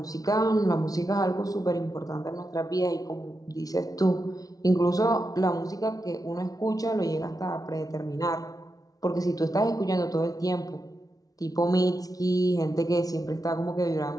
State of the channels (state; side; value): late; right; 0.18 ms